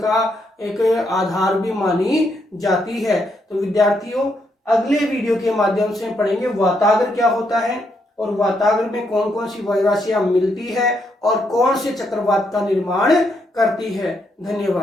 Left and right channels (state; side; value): normal; both; correlation 0.77